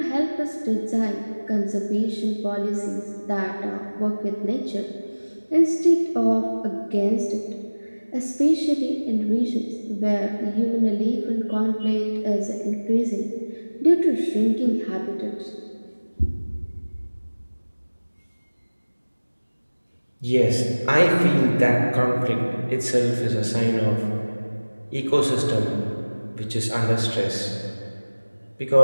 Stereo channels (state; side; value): inverted; both; correlation -1.00